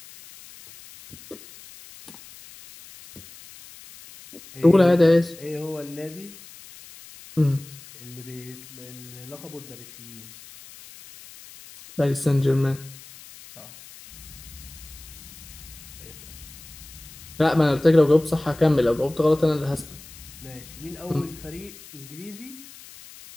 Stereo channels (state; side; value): noise; left; hiss, 18 dB below the sound